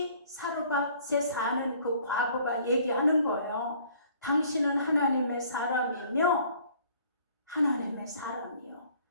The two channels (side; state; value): both; inverted; correlation -0.56